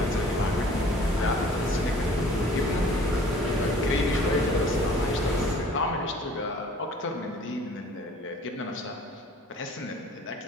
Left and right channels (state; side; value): normal; both; correlation 0.52